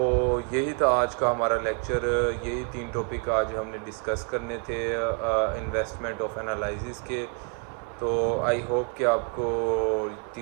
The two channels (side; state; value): left; quieter; 36.8 dB